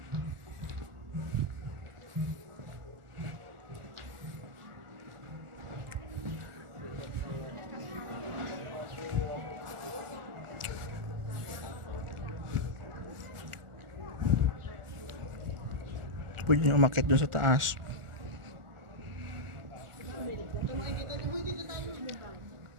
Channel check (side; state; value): left; late; 1.4 ms